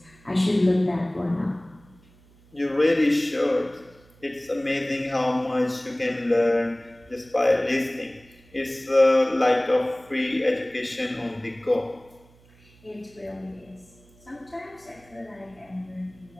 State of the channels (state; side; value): noise; right; hum, 28 dB below the sound